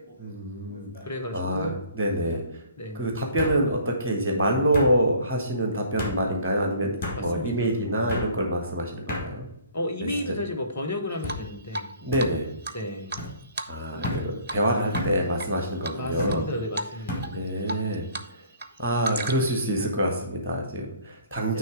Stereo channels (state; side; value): inverted; both; correlation -0.52